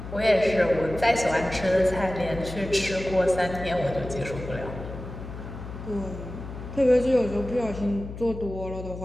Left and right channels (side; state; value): left; noise; hum, 10 dB below the sound